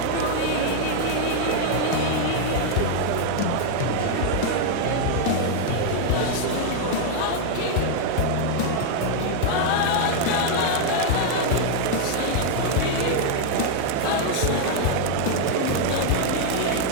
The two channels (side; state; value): both; different; correlation 0.00